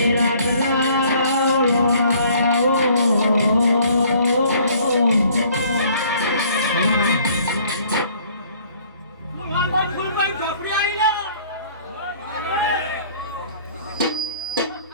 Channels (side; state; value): both; inverted; correlation -0.57